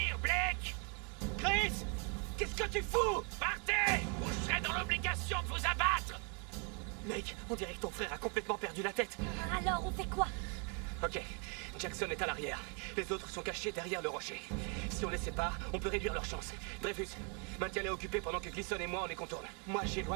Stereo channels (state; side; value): quieter; left; 36.0 dB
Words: Blake! Chris, qu'est-ce que tu fous? Partez! Ou je serai dans l'obligation de vous abattre! Mec, on dirait que ton frère a complètement perdu la tête. Alors, on fait quoi? Ok, Jackson est à l'arrière. Les autres sont cachés derrière le rocher. Si on les sépare, on peut réduire leurs chances. Dreyfus, maintiens-les occupés pendant que Gleason et moi on les contourne. Moi